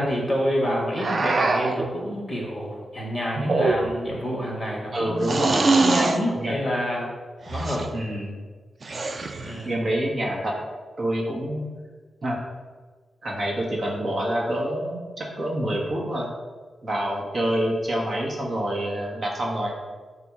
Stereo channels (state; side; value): normal; both; correlation 0.89